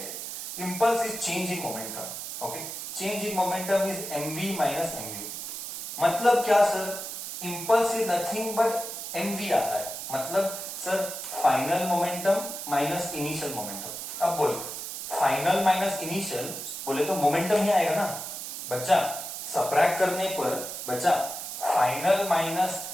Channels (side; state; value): right; noise; hiss, 7 dB below the sound